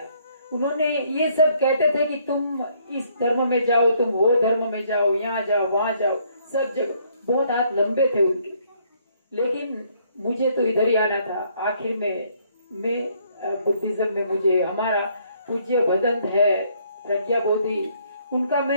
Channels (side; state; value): both; inverted; correlation -0.67